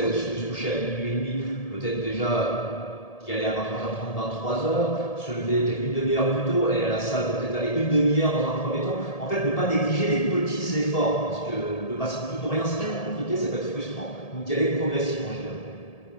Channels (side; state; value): right; late; 1.7 ms